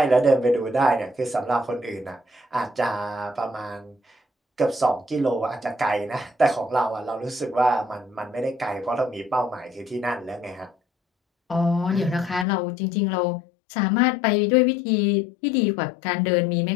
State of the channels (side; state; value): right; drops out; at 12.5 s